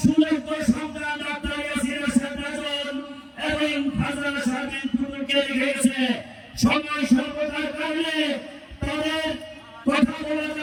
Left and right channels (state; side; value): identical; both; correlation 1.00